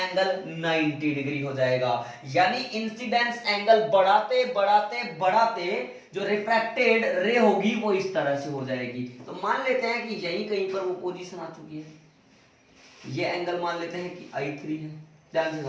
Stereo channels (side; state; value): both; identical; correlation 1.00